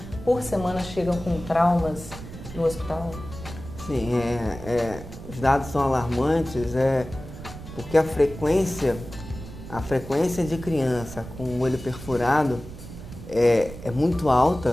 por semana chegam com traumas no hospital? Sim, os dados são alarmantes, porque a frequência de criança com o olho perfurado é muito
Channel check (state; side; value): noise; right; rumble, 13 dB below the sound